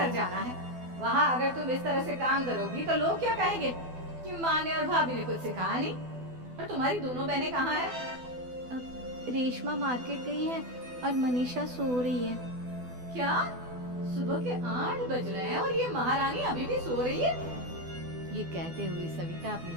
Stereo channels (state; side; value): late; left; 12 ms